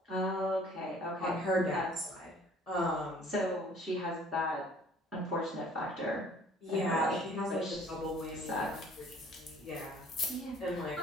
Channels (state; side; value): normal; both; correlation 0.55